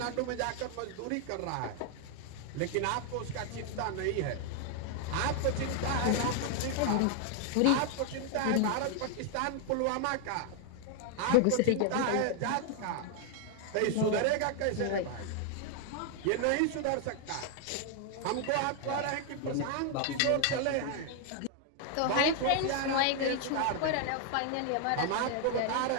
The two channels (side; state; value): both; different; correlation 0.00